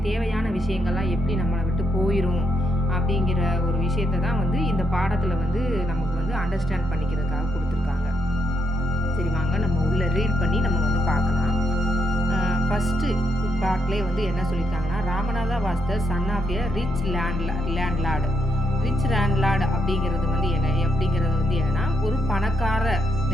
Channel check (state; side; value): normal; both; correlation 0.79